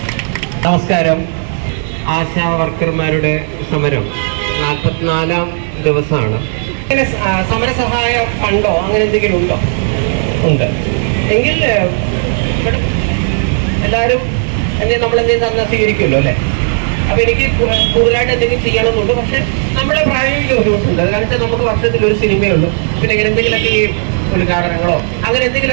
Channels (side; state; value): left; silent; 65 dB below the other